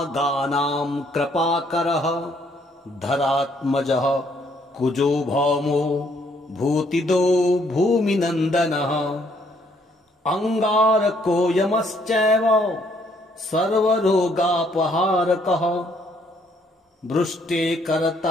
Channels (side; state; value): both; normal; correlation 0.67